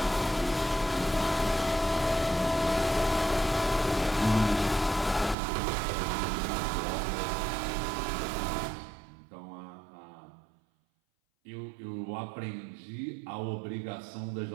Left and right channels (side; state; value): left; drops out; at 5.4 s